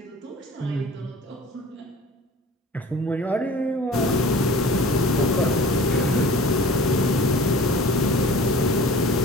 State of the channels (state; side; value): normal; both; correlation 0.43